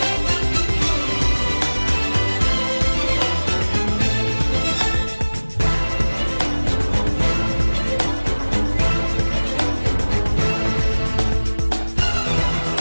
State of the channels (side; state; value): both; inverted; correlation -1.00